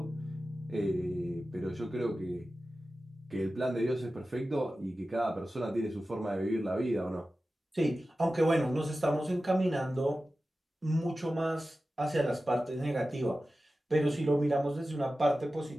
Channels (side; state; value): both; normal; correlation 0.94